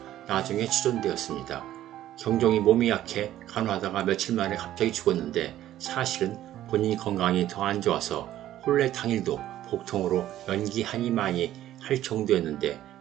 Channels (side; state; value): left; quieter; 13.0 dB